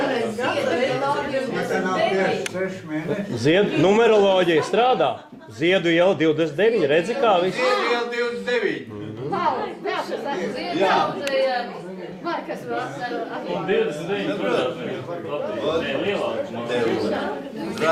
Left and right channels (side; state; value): both; identical; correlation 1.00